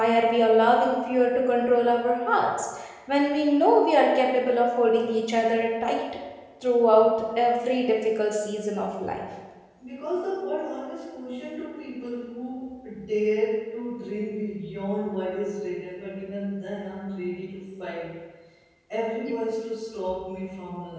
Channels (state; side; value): identical; both; correlation 1.00